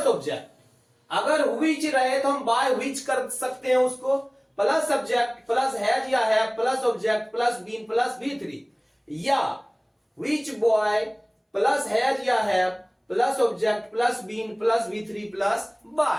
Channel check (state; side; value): identical; both; correlation 1.00